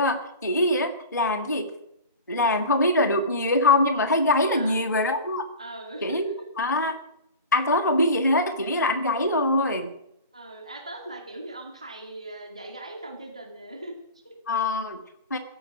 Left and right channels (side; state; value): both; inverted; correlation -0.33